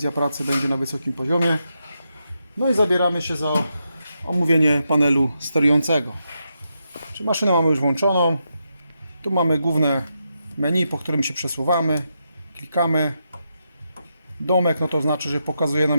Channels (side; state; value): both; inverted; correlation -0.84